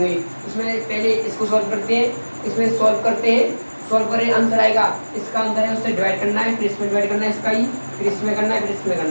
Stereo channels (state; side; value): inverted; both; correlation -1.00